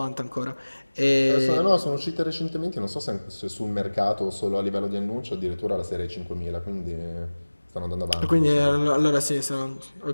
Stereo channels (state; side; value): inverted; both; correlation -1.00